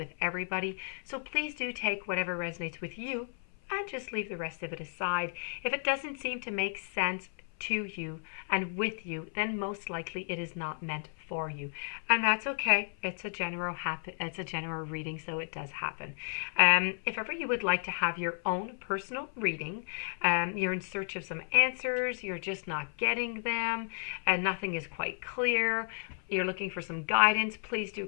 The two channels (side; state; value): right; silent; 56 dB below the other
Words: everybody. So please do take whatever resonates with you and just leave the rest of it aside. If it doesn't seem to make sense to you and with you, then most likely it is not meant for you, and that's okay. It's a general reading, so it does happen. If ever you would like to have your own personal reading, you're in search of some answers, you're just not getting them, and nothing is quite clear, you're looking for some guidance, please do